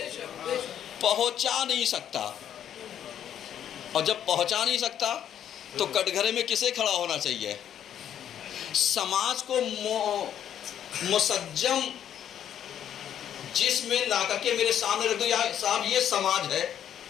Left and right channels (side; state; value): right; quieter; 9.9 dB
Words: پہنچا نہیں سکتا، اور جب پہنچا نہیں سکتا تو کٹگھرے میں کسے کھڑا ہونا چاہیے؟ سماج کو مسجم جس میں لا کر کے میرے سامنے رکھ دو، یا صاحب یہ سماج ہے،